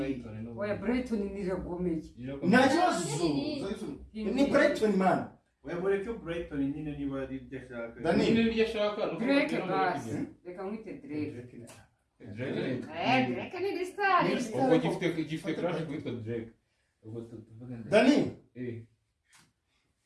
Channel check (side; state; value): both; identical; correlation 1.00